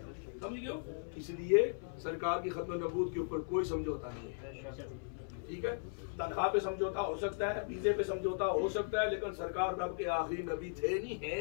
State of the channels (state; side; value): silent; right; 53 dB below the other